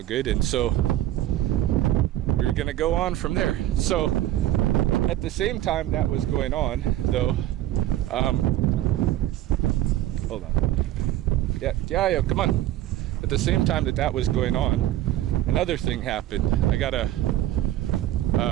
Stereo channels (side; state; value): left; quieter; 13.6 dB